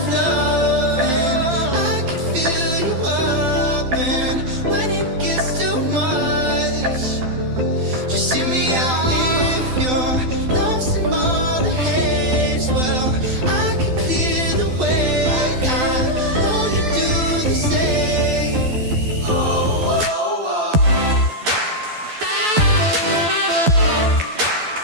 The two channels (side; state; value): left; late; 12 ms